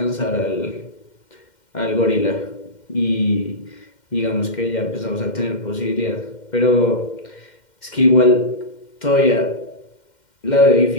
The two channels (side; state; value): right; late; 2.1 ms